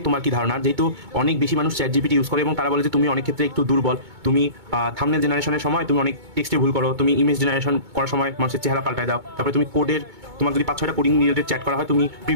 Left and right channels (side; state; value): left; late; 2.2 ms